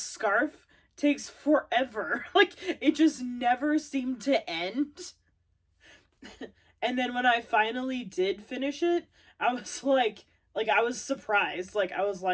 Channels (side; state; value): both; identical; correlation 1.00